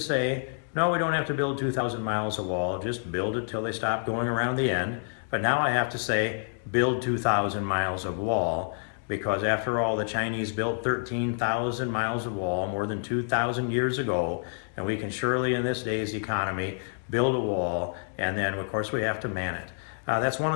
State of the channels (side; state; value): right; silent; digital silence